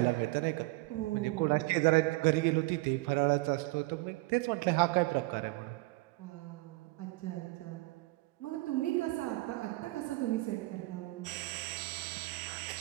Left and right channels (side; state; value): left; quieter; 22.2 dB